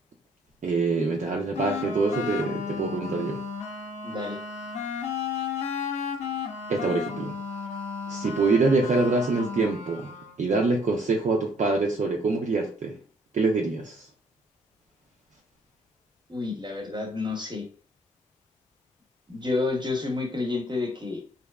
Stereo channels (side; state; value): both; normal; correlation 0.61